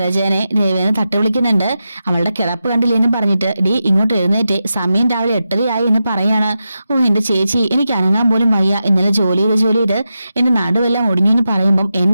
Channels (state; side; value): inverted; both; correlation -0.89